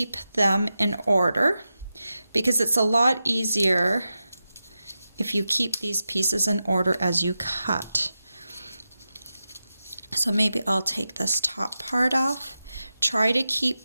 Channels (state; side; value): inverted; both; correlation -0.91